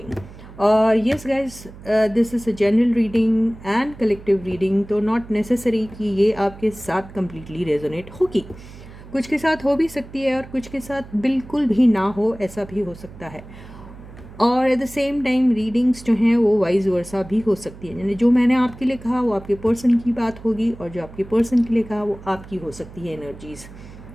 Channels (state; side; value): noise; right; hum, 17 dB below the sound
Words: Yes guys, this is a general reading and collective reading, तो not necessary कि ये आपके साथ completely resonate होगी। कुछ के साथ हो भी सकती है और कुछ के साथ बिल्कुल भी ना हो, ऐसा भी हो सकता है। और at the same time readings जो हैं वो वाइज वर्सा भी हो सकती है, यानी जो मैंने आपके लिए कहा वो आपके पर्सन की बात होगी, और जो आपके पर्सन के लिए कहा वो आपकी हो सकती है एनर्जीज़।